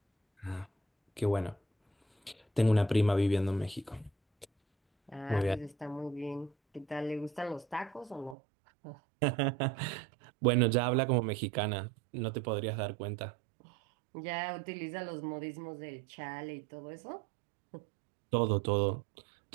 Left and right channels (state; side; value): drops out; left; at 8.3 s